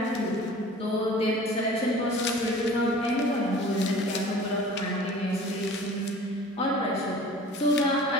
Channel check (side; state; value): both; normal; correlation 0.44